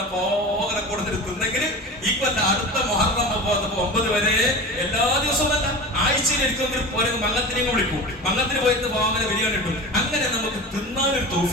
പോകെ കൊടുത്തിട്ട് തിന്നെങ്കിൽ ഈ കൊല്ലം അടുത്ത മുഹറം 9 വരെ എല്ലാ ദിവസവും അല്ല, ആഴ്ചയിൽ എടുക്കുമെങ്കിൽ മങ്ങത്തിനെയും വിളിക്കും. മങ്ങത്തിന് പോയിട്ട് പോകാൻ ബിരിയാണി കിട്ടും. അങ്ങനെ നമുക്ക് തിന്നാനൊരു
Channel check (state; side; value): normal; both; correlation 0.31